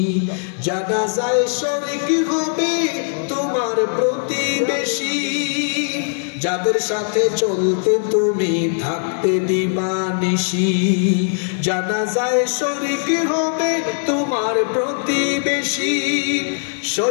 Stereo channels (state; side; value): silent; right; digital silence